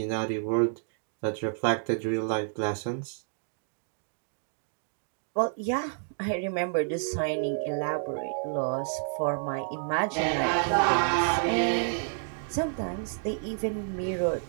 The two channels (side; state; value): left; silent; digital silence